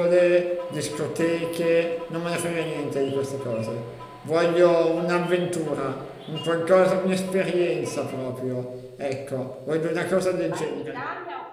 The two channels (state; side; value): identical; both; correlation 1.00